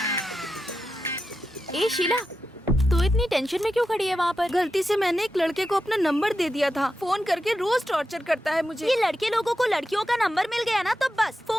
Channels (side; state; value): both; normal; correlation 0.90